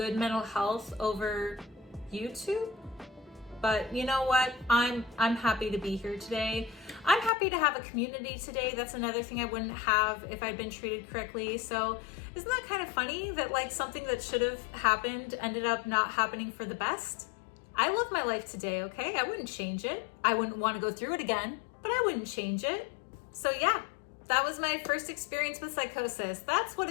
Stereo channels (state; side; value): drops out; right; at 7.3 s